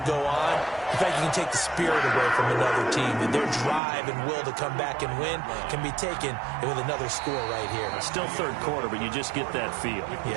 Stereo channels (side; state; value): left; drops out; at 3.8 s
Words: go on, in fact, you can take the spirit away from another team. And their drive and will to come back and win can be taken with another score right here. Still third quarter, but you just get that feel.